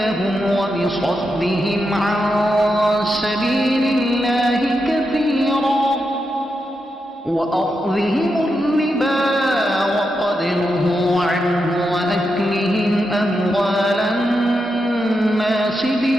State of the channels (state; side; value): normal; both; correlation 0.86